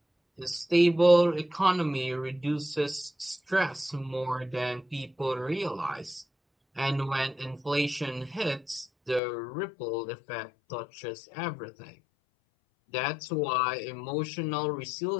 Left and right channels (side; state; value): right; drops out; at 9.2 s